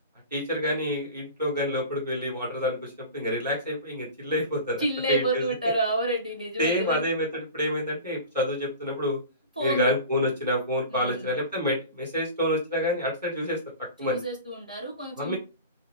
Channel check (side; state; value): both; inverted; correlation -0.35